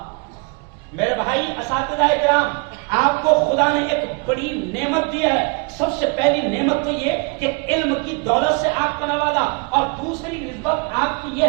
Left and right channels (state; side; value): quieter; left; 30.8 dB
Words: میرے بھائی اساتذہ کرام، آپ کو خدا نے ایک بڑی نعمت دی ہے. سب سے پہلی نعمت تو یہ کہ علم کی دولت سے آپ کو نوازا، اور دوسری نسبت آپ کی یہ